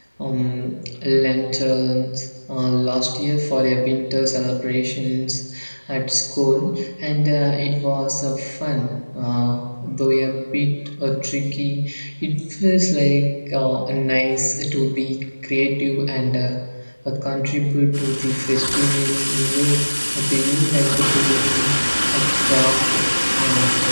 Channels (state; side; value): inverted; both; correlation -1.00